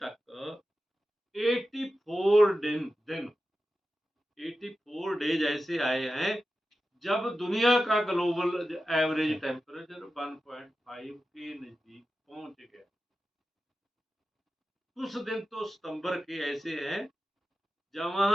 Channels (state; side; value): normal; both; correlation 0.93